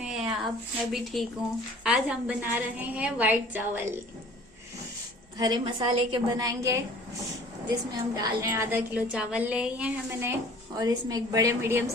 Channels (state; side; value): normal; both; correlation 0.49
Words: हैं आप? मैं भी ठीक हूँ। आज हम बना रहे हैं वाइट चावल। हरे मसाले के बनाएंगे, जिसमें हम डाल रहे हैं आधा किलो चावल लिए हैं मैंने, और इसमें एक बड़े मीडियम